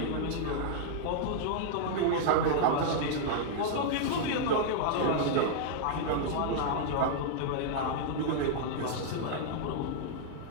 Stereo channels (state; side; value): different; both; correlation -0.01